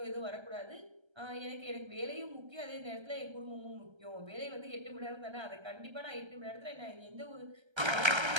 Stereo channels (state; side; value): late; left; 1.3 ms